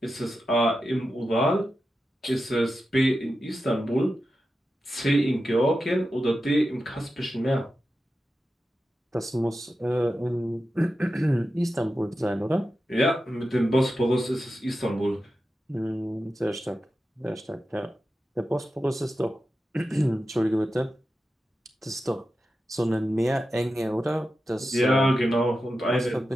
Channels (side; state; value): both; normal; correlation 0.91